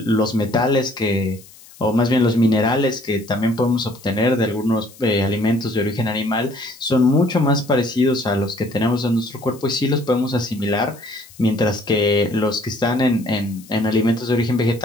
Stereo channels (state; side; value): noise; left; hiss, 23 dB below the sound